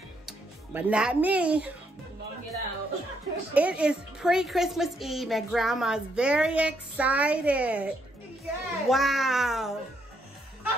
But not me. Don't get out. It is pre-Christmas Eve and Grandma's very excited. Yes. Wow.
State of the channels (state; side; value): normal; both; correlation 0.74